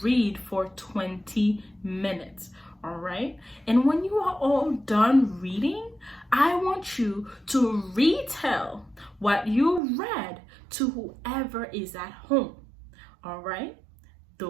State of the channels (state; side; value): drops out; left; at 9.8 s